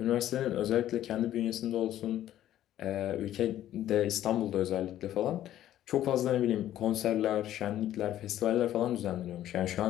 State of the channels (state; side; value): quieter; right; 12.5 dB